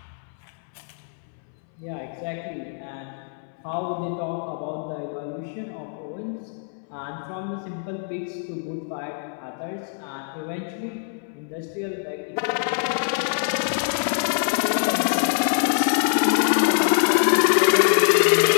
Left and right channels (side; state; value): right; silent; 62 dB below the other